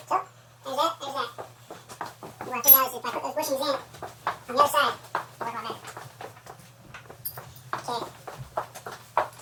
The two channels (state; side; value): identical; both; correlation 1.00